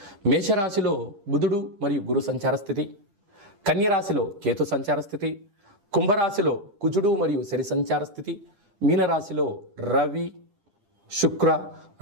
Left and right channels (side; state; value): left; late; 9.9 ms